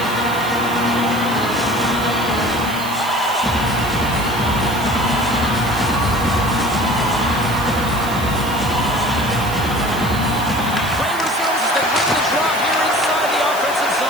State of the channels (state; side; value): noise; right; hiss, 13 dB below the sound